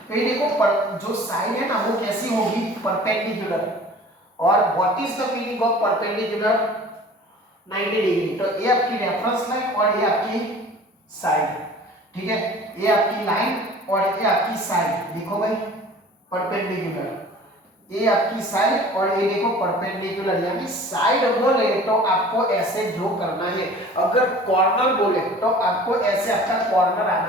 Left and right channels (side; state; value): both; normal; correlation 0.45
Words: तो ये देखो जो साइड है ना वो कैसी होगी, परपेंडिकुलर। और what is the meaning of perpendicular, 90 degree. तो ये आपकी रेफरेंस लाइन और ये आपकी साइड, ठीक है, ये आपकी लाइन और ये आपकी साइड, देखो भाई परपेंडिकुलर, ये आपकी साइड और ये देखो परपेंडिकुलर, यानी साइड बोले तो आपको ऐसे ड्रॉ करना है, अगर कॉर्नर बोले तो आपको ऐसे आपका कॉर्नर